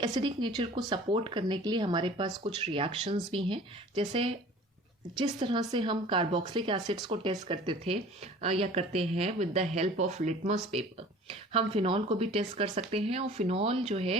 नेचर को सपोर्ट करने के लिए हमारे पास कुछ रिएक्शंस भी हैं. जैसे जिस तरह से हम कार्बोक्सिलिक एसिड्स को टेस्ट करते थे या करते हैं with the help of litmus paper, हम फिनॉल को भी टेस्ट कर सकते हैं. और फिनॉल जो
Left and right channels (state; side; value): normal; both; correlation 0.45